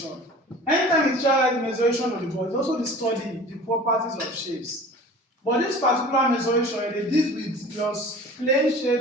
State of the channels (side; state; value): both; normal; correlation 0.42